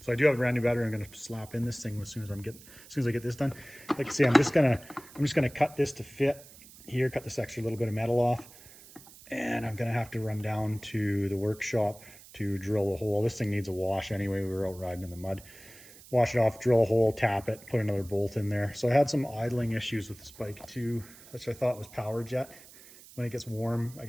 So I do have a brand new battery. I'm going to slap in this thing as soon as I get this done. Like I say, I'm just gonna cut this to fit here, cut this extra little bit of metal off, and I'm gonna have to run down to the workshop to drill a hole. This thing needs a wash anyway. We were out riding in the mud. Wash it off, drill a hole, tap it, put another bolt in there. So I had some idling issues with this bike too, which I thought was power jet. When it gets warm, I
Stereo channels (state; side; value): noise; right; hiss, 20 dB below the sound